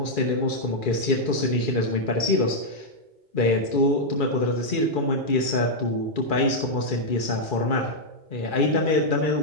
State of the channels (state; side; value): late; right; 2.4 ms